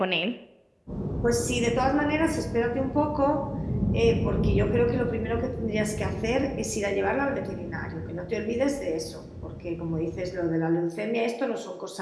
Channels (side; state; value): both; identical; correlation 1.00